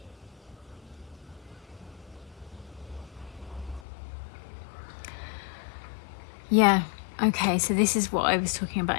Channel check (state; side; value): drops out; right; at 3.9 s